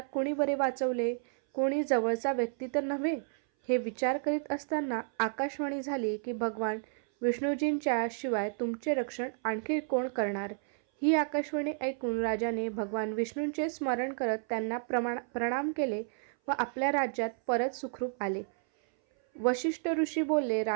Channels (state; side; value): silent; left; 57 dB below the other